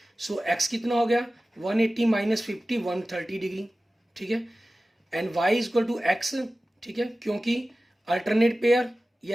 सो एक्स कितना हो गया 180 - 50 130 डिग्री, ठीक है। एंड y = x, ठीक है, क्योंकि अल्टरनेट पेयर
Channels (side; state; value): both; normal; correlation 0.96